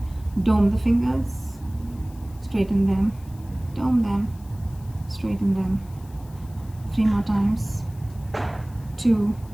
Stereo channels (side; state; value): left; noise; hiss, 26 dB below the sound